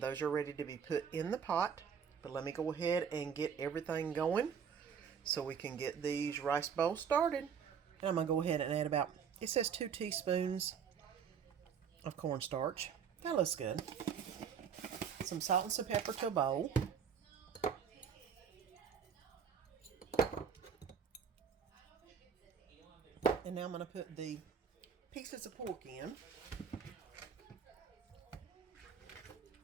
are ready to be put in the pot. But let me go ahead and get everything going so we can get these rice bowls started. And I'm going to go ahead and add about, it says 2 teaspoons of cornstarch. That looks good. Some salt and some pepper to a bowl. And now I'm going to put the pieces of pork in.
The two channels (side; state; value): left; quieter; 7.2 dB